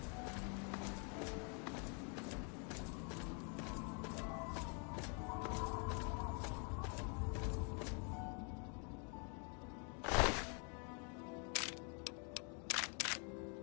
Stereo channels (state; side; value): quieter; right; 38.4 dB